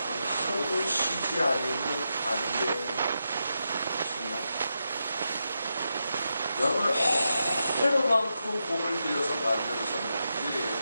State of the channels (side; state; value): both; inverted; correlation -0.86